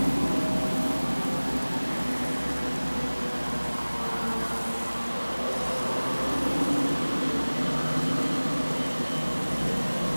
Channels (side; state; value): both; inverted; correlation -1.00